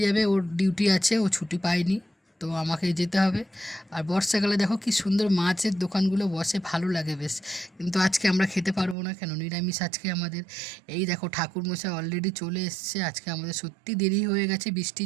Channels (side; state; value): left; drops out; at 9.0 s